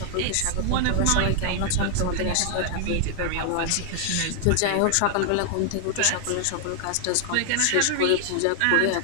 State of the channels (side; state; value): both; different; correlation 0.00